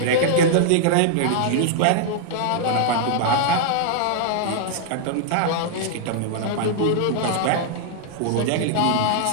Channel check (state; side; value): different; both; correlation -0.01